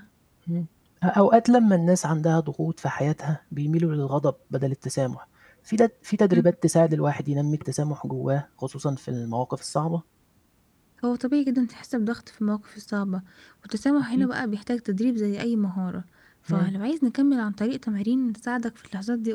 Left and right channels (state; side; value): identical; both; correlation 1.00